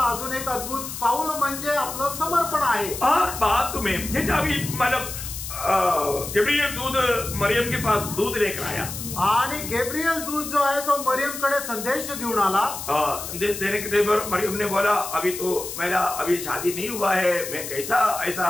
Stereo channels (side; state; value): left; noise; hiss, 8 dB below the sound